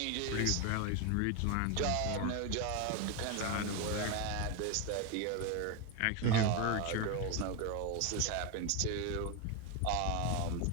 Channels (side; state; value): both; different; correlation 0.02